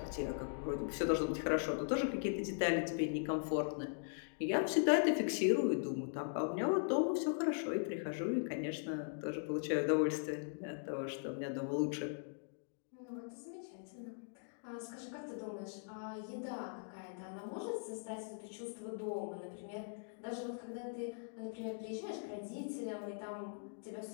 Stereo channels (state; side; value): silent; right; digital silence